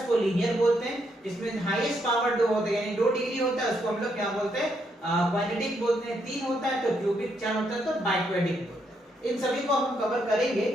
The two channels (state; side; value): normal; both; correlation 0.76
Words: लीनियर बोलते हैं, जिसमें हाईएस्ट पावर दो होते हैं यानी दो डिग्री होता है उसको हम लोग क्या बोलते हैं क्वाड्रेटिक बोलते हैं, तीन होता है तो क्यूबिक, चार होता है तो बाइक्वाड्रिक बोलते हैं। इन सभी को हम कवर करेंगे,